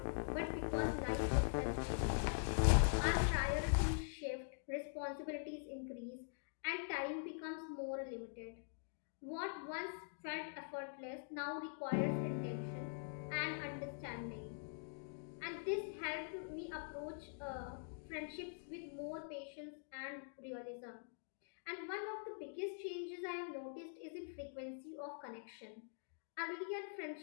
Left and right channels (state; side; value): silent; right; digital silence